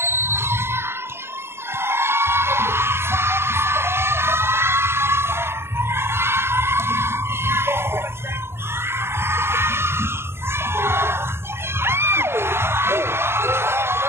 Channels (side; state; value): left; late; 0.12 ms